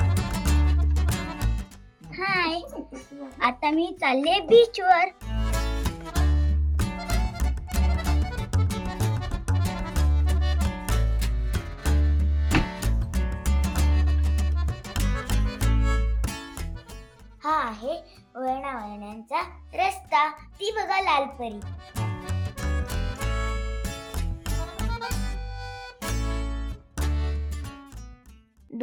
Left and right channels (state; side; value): identical; both; correlation 1.00